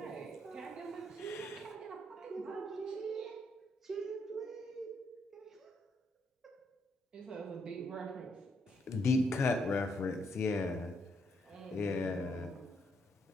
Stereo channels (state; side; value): normal; both; correlation 0.75